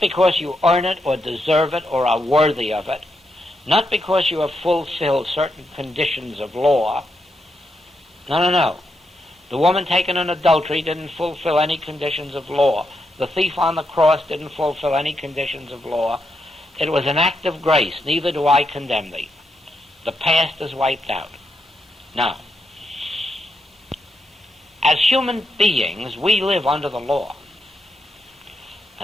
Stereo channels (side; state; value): both; normal; correlation 0.82